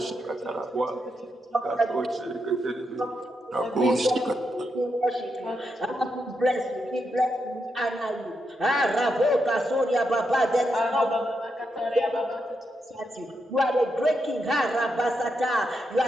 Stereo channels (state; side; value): normal; both; correlation 0.83